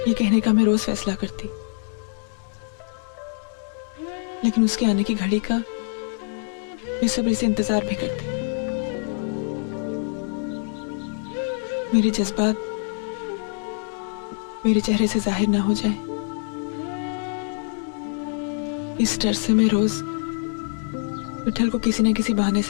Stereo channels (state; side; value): silent; right; 62 dB below the other